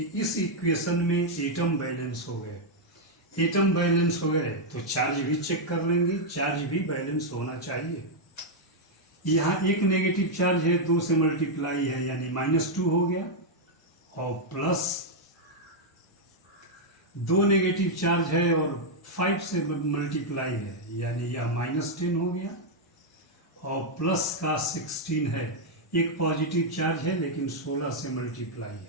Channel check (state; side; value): normal; both; correlation -0.03